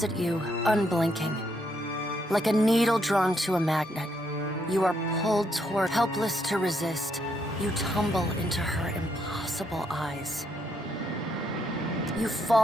at you, unblinking. Like a needle drawn to a magnet, you are pulled toward, helpless to resist. You tumble into her impossible eyes. You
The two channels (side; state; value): both; normal; correlation 0.75